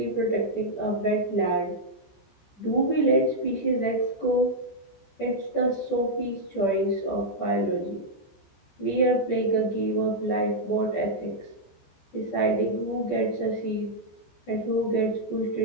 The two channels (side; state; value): right; late; 14 ms